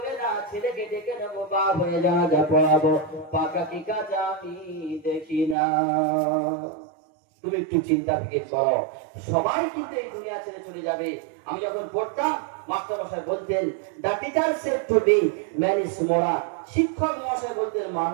না, ছেলেকে ডেকে নেবো, বাপ হয়ে যা পড়াবো, পাকা কি কাজা আমি দেখি না। তুমি একটু চিন্তা ফিকির করো, সবাই কিন্তু এই দুনিয়া ছেড়ে চলে যাবে। আমি যখন পড়তাম, মাস্টার মশাই বলতেন, the teacher said to be man is moral, শিক্ষক মশাই বলতেন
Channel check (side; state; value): left; drops out; at 5.6 s